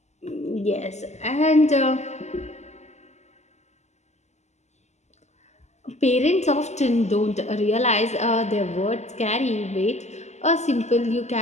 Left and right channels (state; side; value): late; right; 0.33 ms